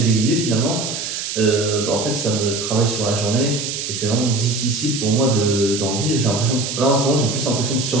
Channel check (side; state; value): right; noise; hiss, 5 dB below the sound